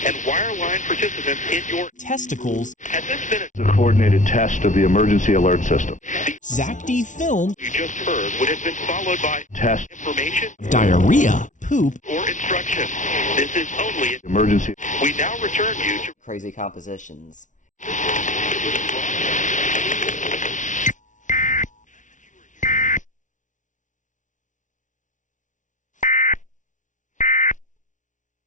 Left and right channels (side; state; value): right; late; 0.37 ms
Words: and wireline participants in your testicles... At this minute, The coordinated test of the emergency alert system. Zack D film... you just heard would have been followed by Test information diarrhea... poop... or instruction. This is only... emergency. We now return you to... Crazy compositions.